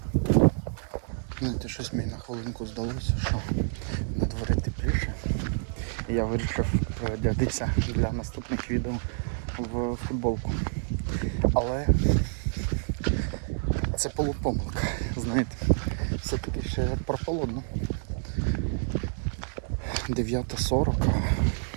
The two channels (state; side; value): silent; left; digital silence